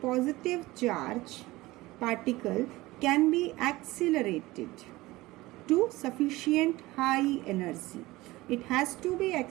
charge particle can be accelerated to sufficient high energy. It has to be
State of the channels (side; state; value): left; quieter; 19.4 dB